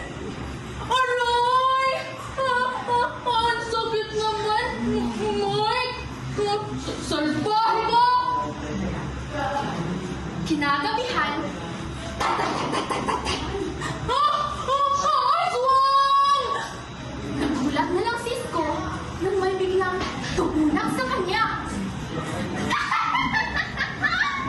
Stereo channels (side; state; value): both; identical; correlation 1.00